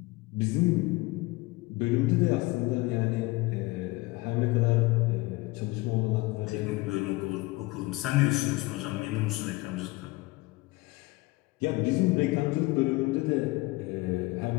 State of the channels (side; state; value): right; quieter; 22.1 dB